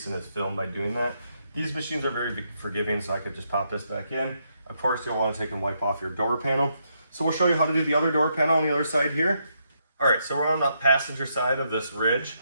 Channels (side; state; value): both; inverted; correlation -0.78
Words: in his film by doing that. These machines are very forgiving, so I could just pop this back in. Of course, you'll want to take and wipe off your door panel. So we'll show you how to do the other door panel on the other side here. All right, so we're on the passenger side of this Ridge.